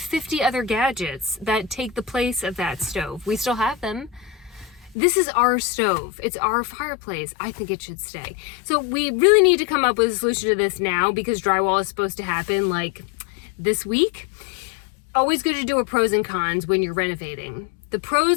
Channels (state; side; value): drops out; right; at 5.0 s